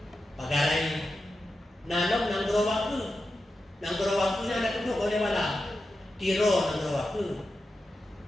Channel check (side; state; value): both; normal; correlation 0.90